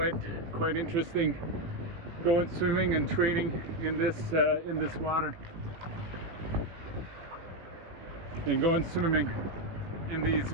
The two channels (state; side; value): late; left; 18 ms